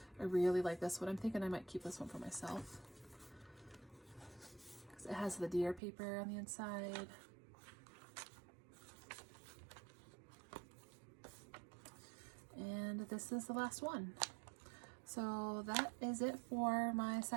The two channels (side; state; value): left; drops out; at 5.8 s